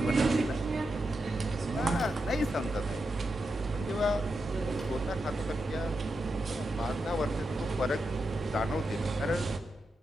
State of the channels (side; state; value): both; normal; correlation 0.87